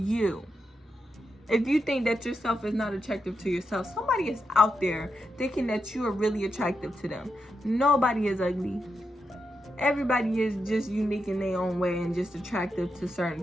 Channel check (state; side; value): normal; both; correlation 0.85